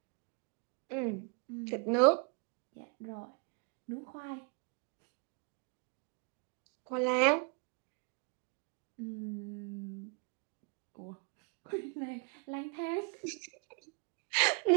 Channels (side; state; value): left; quieter; 36.5 dB